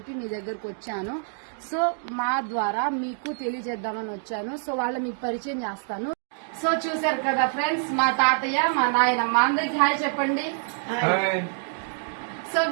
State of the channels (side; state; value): left; silent; digital silence